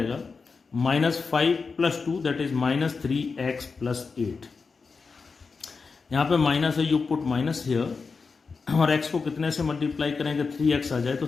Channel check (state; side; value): quieter; right; 4.8 dB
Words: minus 5 plus 2 that is minus 3x plus 8। यहाँ पे माइनस है, यू पुट माइनस हियर, और x को कितने से मल्टीप्लाई करेंगे 3x आ जाए तो